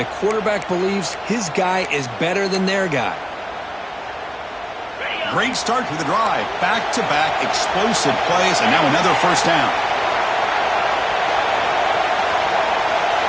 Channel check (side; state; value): both; identical; correlation 1.00